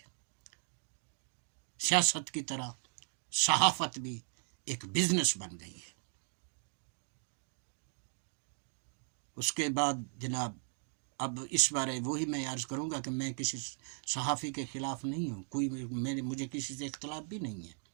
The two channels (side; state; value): left; silent; 53 dB below the other